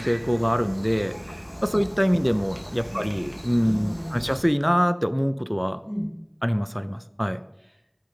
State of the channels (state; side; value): identical; both; correlation 1.00